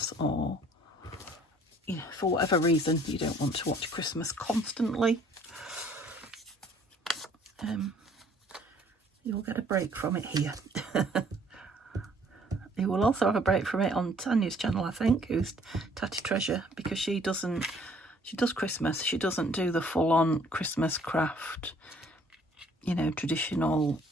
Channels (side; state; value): both; normal; correlation 0.59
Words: or, you know, for whatever reason you don't want to watch Christmas constantly. You'll get a break from it here. You will also have a break from it on Tanya's channel, I think, who's Tatty Treasure, because she doesn't She does Christmas. She doesn't do the full-on Christmas craft, you know, traditional